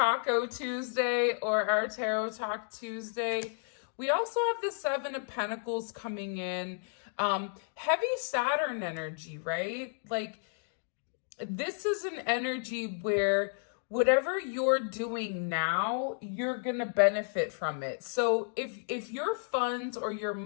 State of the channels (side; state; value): right; silent; digital silence